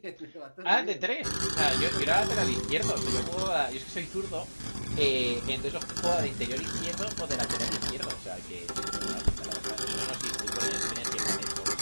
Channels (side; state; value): both; inverted; correlation -1.00